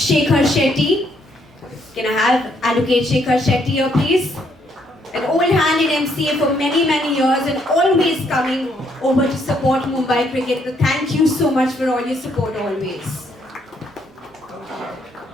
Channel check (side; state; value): both; normal; correlation 0.71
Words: Shetty. Can I have Advocate Shekhar Shetty here, please? An old hand in MCA for many years and always coming over to support Mumbai cricket. So thank you so much for all your support always.